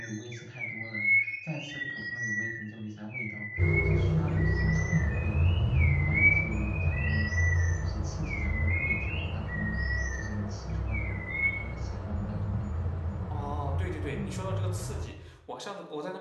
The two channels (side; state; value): both; identical; correlation 1.00